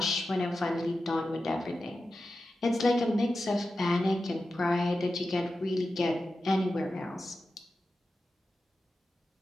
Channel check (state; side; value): normal; both; correlation 0.92